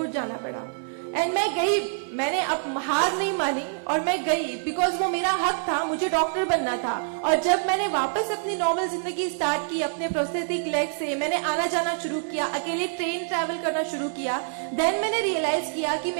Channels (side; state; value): left; silent; digital silence